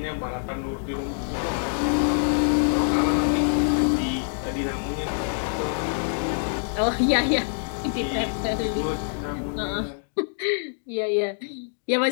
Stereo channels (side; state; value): right; silent; digital silence